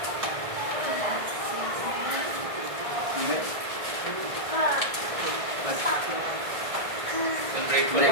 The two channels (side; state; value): left; late; 1.6 ms